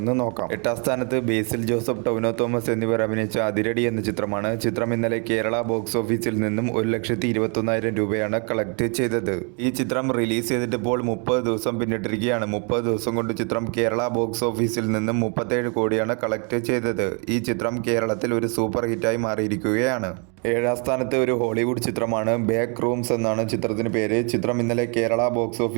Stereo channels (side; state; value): left; quieter; 36.7 dB